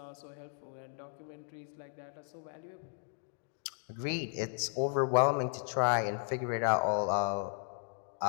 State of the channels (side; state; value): right; silent; digital silence